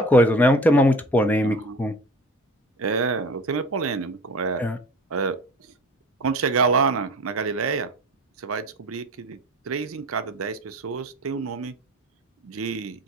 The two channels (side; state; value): both; normal; correlation 0.40